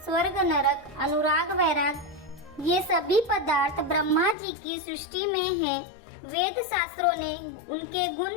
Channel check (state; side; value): drops out; right; at 4.4 s